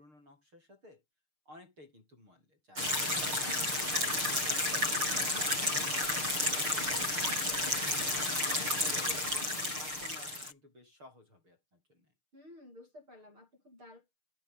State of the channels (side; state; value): left; late; 6.6 ms